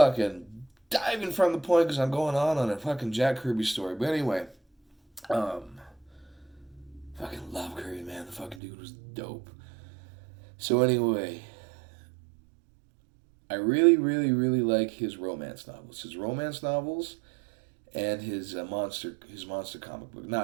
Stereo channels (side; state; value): left; drops out; at 8.6 s